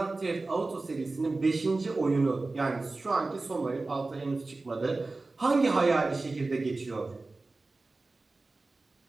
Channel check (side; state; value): left; quieter; 3.4 dB